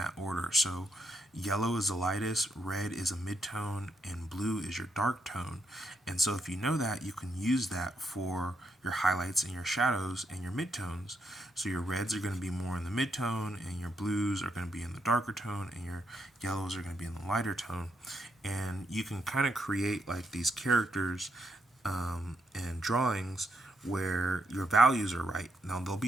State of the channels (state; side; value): normal; both; correlation 0.78